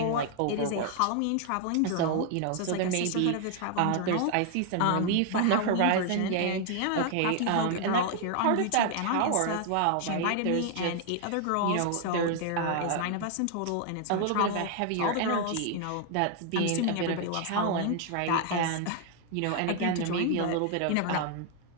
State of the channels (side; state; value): both; different; correlation 0.00